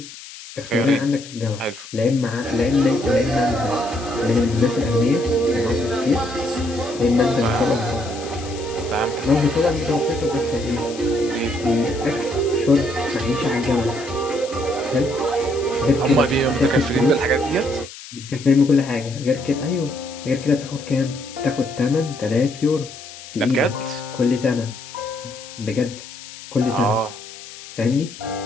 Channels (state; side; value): noise; left; hiss, 15 dB below the sound